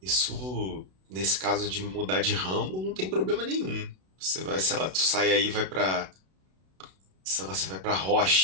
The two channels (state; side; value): late; left; 32 ms